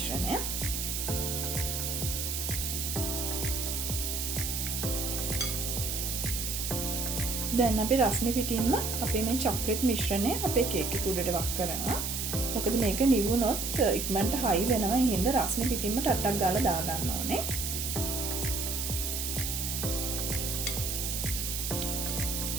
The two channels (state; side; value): noise; right; hiss, 2 dB below the sound